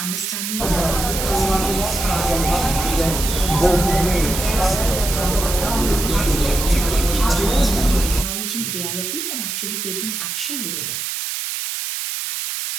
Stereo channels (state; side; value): noise; right; hiss, 4 dB below the sound